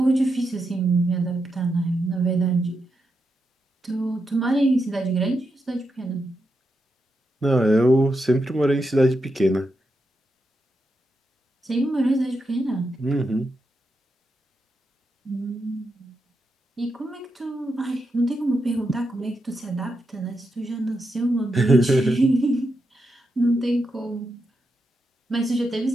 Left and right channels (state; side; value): normal; both; correlation 0.85